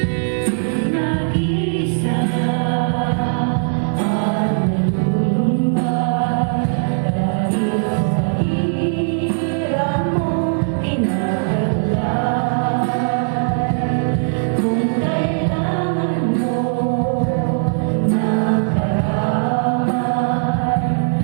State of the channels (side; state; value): left; silent; digital silence